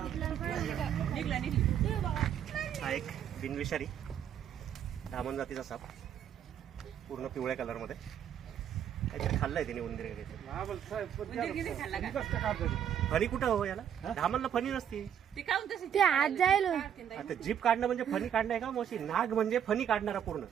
निघलं. हा एक बिनविषारी धामण जातीचा साप, पूर्ण पिवळ्या कलरमध्ये. काहीतरी खाल्लंय त्याने उंदीर वगैरे. फणी कुठं हो याला? धामणला फणी नसती. ते आत जाईल. आता जीप काढणं म्हणजे फणी काढणं आहे का मोशी? नाग म्हणजे फणी काढणारा पूर्ण.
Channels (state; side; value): quieter; left; 9.3 dB